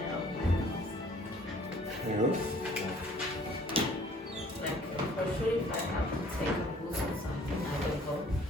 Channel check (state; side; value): normal; both; correlation 0.55